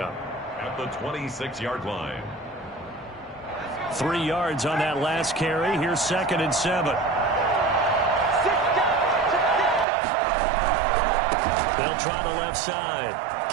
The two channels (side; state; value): left; drops out; at 9.9 s